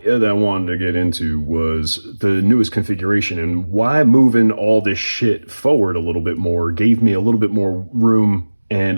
that I wanted to get into was the newest configuration and why moving all this shit forward a little bit more gave me a little bit more room and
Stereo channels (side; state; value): both; inverted; correlation -1.00